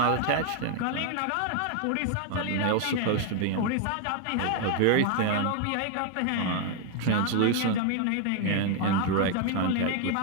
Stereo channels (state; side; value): different; both; correlation 0.01